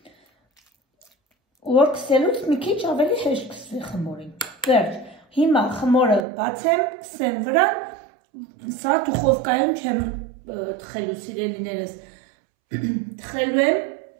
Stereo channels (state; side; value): drops out; left; at 6.2 s